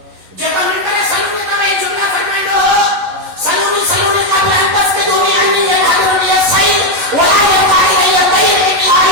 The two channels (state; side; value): late; left; 11 ms